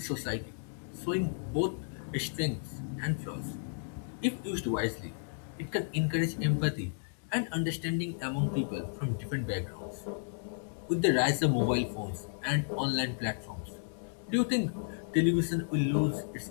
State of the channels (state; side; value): silent; right; digital silence